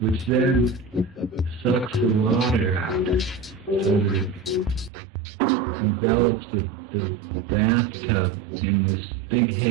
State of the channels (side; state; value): left; drops out; at 4.9 s